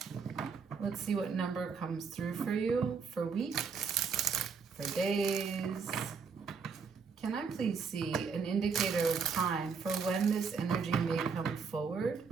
Let's see what number comes through for you for weeks, for days. Can I please see an indicator of time for when this energy may come forward?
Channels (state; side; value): quieter; left; 5.6 dB